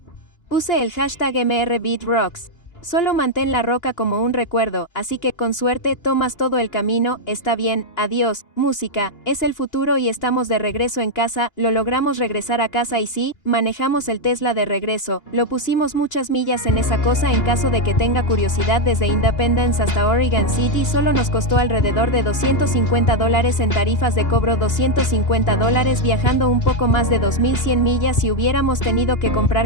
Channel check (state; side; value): late; right; 2.9 ms